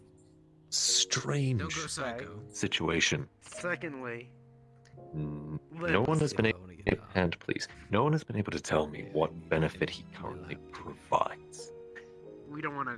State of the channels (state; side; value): identical; both; correlation 1.00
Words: strange Don't go psycho. situation. Secondly, No one has been able, and please, no one has been able to tell me what benefit he currently provides. we don't want